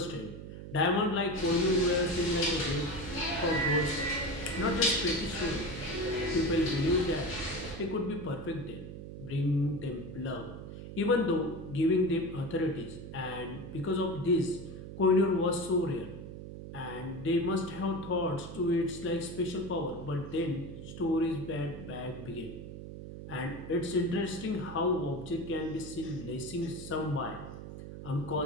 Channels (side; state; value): right; noise; hum, 10 dB below the sound